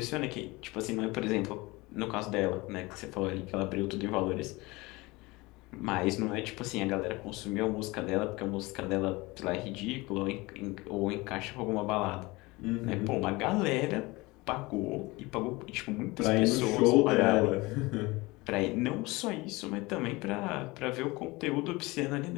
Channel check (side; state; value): right; quieter; 22.7 dB